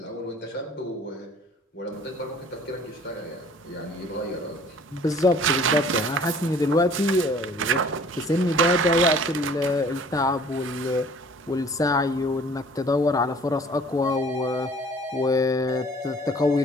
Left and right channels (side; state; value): both; normal; correlation 0.52